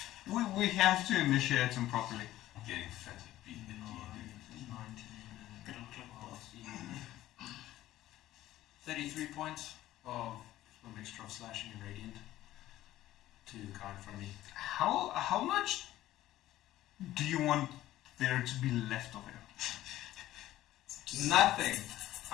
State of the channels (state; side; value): quieter; right; 14.6 dB